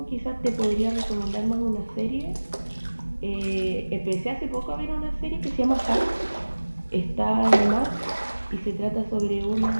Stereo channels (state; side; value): inverted; both; correlation -1.00